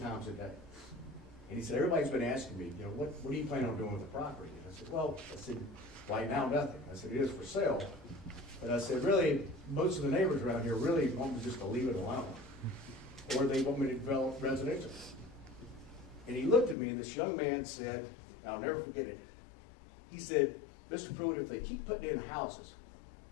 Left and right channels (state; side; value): drops out; right; at 16.8 s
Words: a day. And he said, everybody's been asking me, you know, what do you plan on doing with the property? And I said, well, right now, nothing. I said, it is for sale. But I said, really, most of the neighbors around here really want me just to leave it alone. Or they want me to develop residential. And he looked at me, and this young man said, I'll never forget it. He said, Mr. Pruitt, if they keep putting in houses,